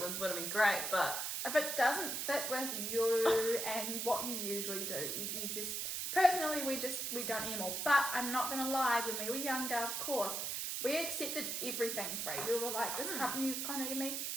would have been great, but... If it doesn't fit with you and what you usually do, you just... Personally, we don't anymore, but I'm not going to lie, when we were younger, of course, we accepted everything free. We were like, this company contacted me,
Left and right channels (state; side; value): noise; right; hiss, 2 dB below the sound